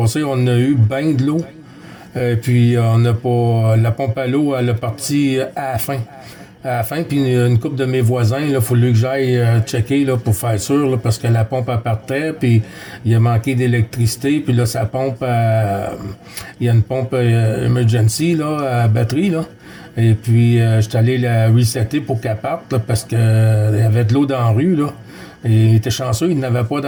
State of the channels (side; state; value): both; identical; correlation 1.00